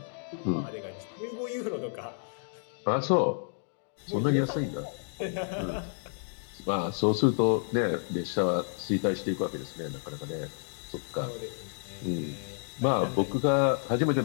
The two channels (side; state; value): right; silent; digital silence